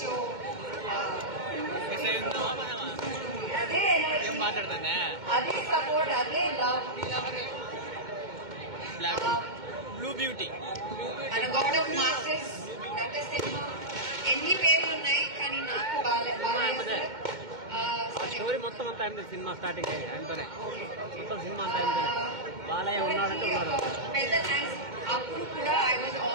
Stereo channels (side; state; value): left; late; 2.1 ms